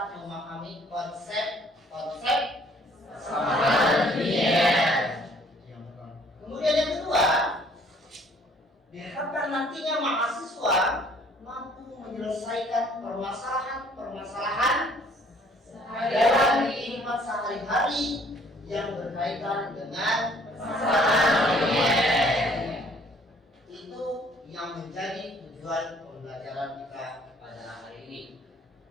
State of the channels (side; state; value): both; normal; correlation 0.59